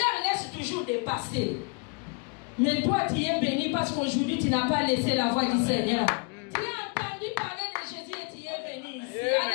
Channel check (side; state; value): right; quieter; 33.8 dB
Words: laisse toujours de passer. Mais toi, tu es béni parce qu'aujourd'hui, tu n'as pas laissé la voix du Seigneur. Tu as entendu parler de Jésus et tu es béni ici.